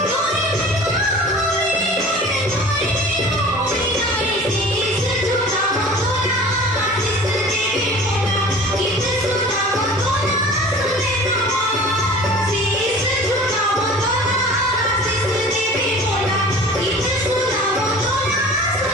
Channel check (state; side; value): normal; both; correlation 0.42